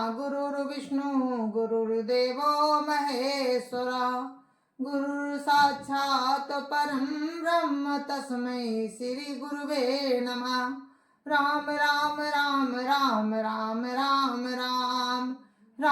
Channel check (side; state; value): both; identical; correlation 1.00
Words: गुरुर् विष्णु गुरुर्देवो महेश्वर, गुरुर् साक्षात् परं ब्रह्म तस्मै श्री गुरुवे नमः। राम राम राम राम राम राम राम